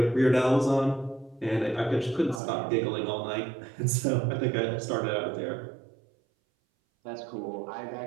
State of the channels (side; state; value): left; drops out; at 2.4 s